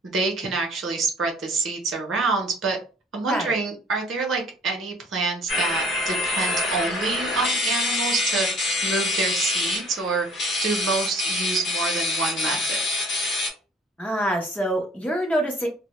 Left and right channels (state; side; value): normal; both; correlation 0.53